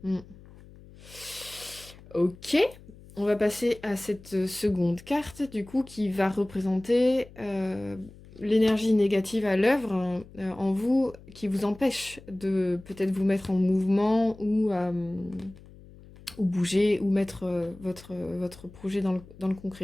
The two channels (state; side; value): noise; left; hum, 21 dB below the sound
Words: Mm. Ok, on va passer à cette seconde carte, du coup, qui va représenter l'énergie négative à l'œuvre en vous, qui vous empêche de peut-être vous mettre en mouvement ou bouger, ou mettre votre projet dans le